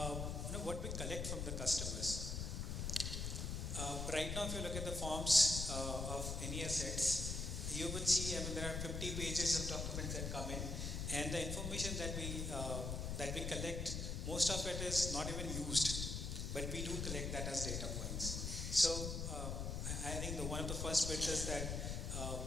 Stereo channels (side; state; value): left; noise; rumble, 2 dB below the sound